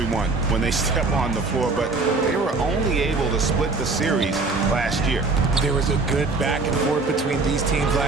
when they step on the floor, but they were only able to split the series last year. There was a good back and forth between these teams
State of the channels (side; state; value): left; quieter; 3.7 dB